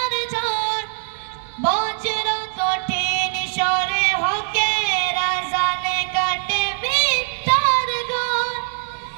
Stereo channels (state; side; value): silent; left; 59 dB below the other